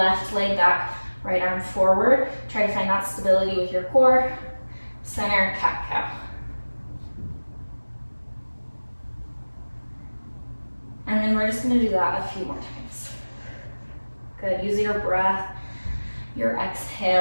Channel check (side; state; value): both; inverted; correlation -1.00